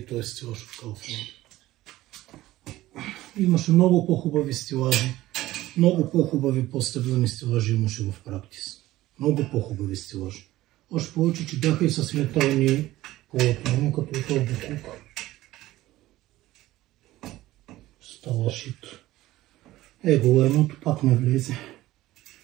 той е стилаж от Kaufland. Имаше много по-хубави стилажи. Много по-хубави по-стъблени стилажи имаше в практис. Много по-хубави стилажи. Още повече, че бяха и с метални полотна, като този буклук. Става шит. Его, едното пак не влезе.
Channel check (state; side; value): quieter; left; 16.3 dB